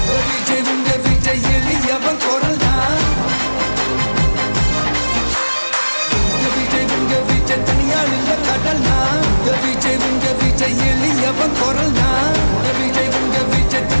விஜய் உங்க விஜய் எளியவன் குரல்னா விஜய் உங்க விஜய் தனியால் இல்ல கடல்னா விஜய் உங்க விஜய் எளியவன் குரல்னா விஜய் உங்க விஜய்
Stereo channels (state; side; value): inverted; both; correlation -1.00